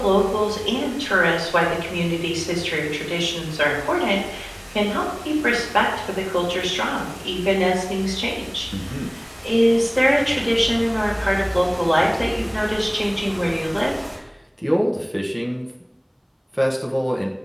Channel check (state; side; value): identical; both; correlation 1.00